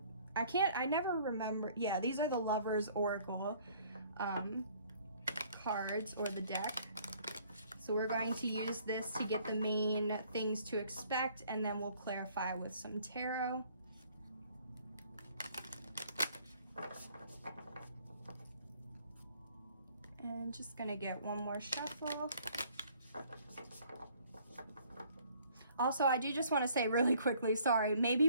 never remember. Yeah, these are the Lovers Oracle cards, or the deck. So we're going to use this to get the main things to expect, and then we'll clarify with some tarot. And just gonna get one more shuffle. Also, I do just want to say really quickly, sorry,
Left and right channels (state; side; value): inverted; both; correlation -0.59